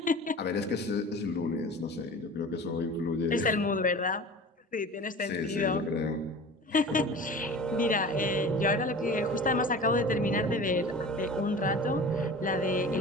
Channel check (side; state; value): both; normal; correlation 0.38